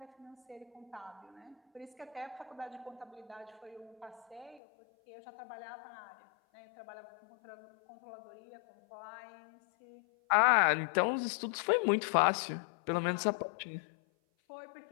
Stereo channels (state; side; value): drops out; right; at 4.6 s